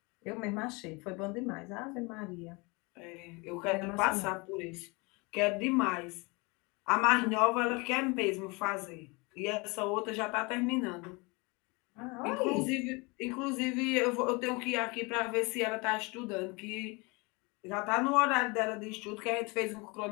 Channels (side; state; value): right; quieter; 27.6 dB